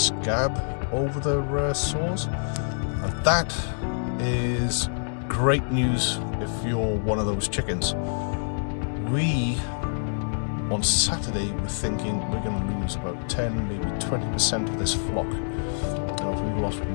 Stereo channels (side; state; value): right; silent; digital silence